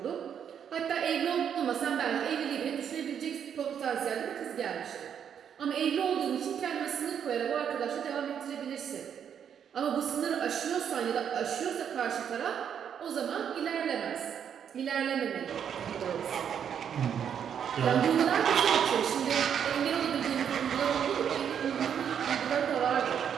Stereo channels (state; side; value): quieter; left; 8.3 dB